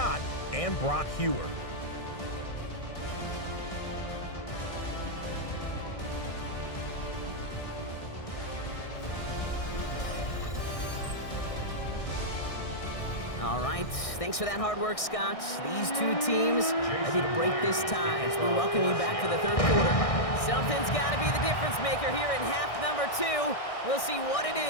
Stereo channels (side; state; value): right; late; 1.6 ms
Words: and Brock Hewer. All right, thanks for that hard work, Scott. These two teams ready to break this tie as we welcome you back for the third quarter. Something's got to be the difference maker here in half number 2. We'll see what it